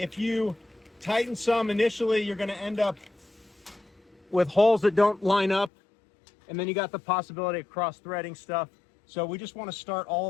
you tighten some initially, you're going to end up with holes that don't line up, and then you got the possibility of cross-threading stuff. So we just want to start all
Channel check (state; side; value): drops out; right; at 5.7 s